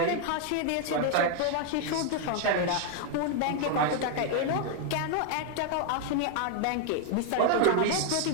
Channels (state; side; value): different; both; correlation 0.00